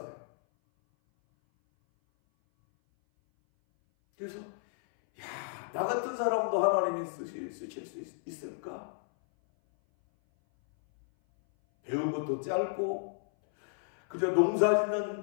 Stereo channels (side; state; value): right; silent; 56 dB below the other